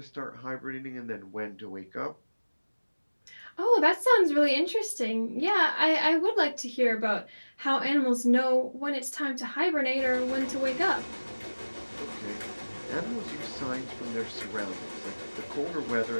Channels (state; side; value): inverted; both; correlation -1.00